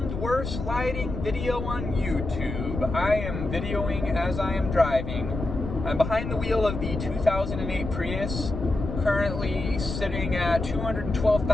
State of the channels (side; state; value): left; noise; rumble, 6 dB below the sound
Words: worst lighting video on YouTube. I am videoing as I am driving. I'm behind the wheel of the 2008 Prius, currently sitting at